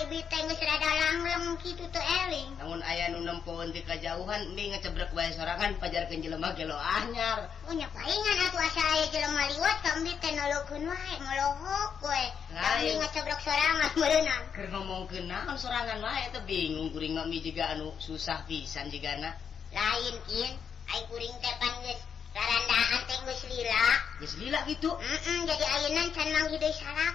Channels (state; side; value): quieter; right; 7.2 dB